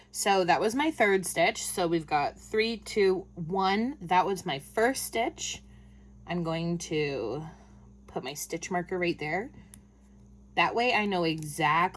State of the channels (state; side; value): identical; both; correlation 1.00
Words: So that was my third stitch. So we've got 3, 2, 1. That was my first stitch. I'm going to put my stitch marker right there. That way I know